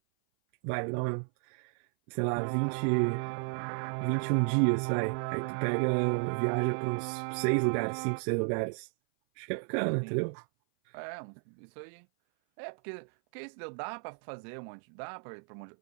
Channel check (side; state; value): left; silent; 56 dB below the other